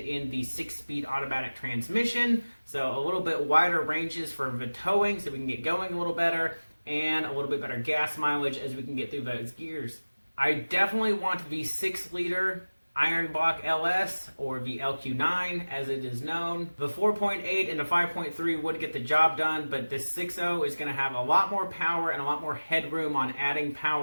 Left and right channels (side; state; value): both; inverted; correlation -1.00